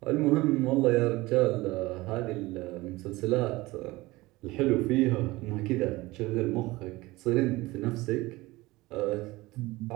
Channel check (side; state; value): left; quieter; 20.4 dB